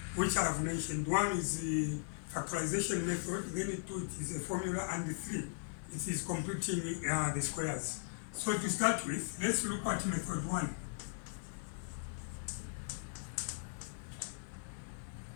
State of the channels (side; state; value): right; silent; 52 dB below the other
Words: which I have mentioned. One is the factorization method, then 2 it is a formula, and the 3 it is completing the squares. So to start with, let's look at method 1.